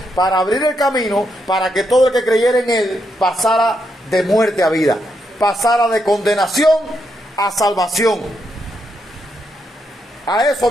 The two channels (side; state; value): both; normal; correlation 0.80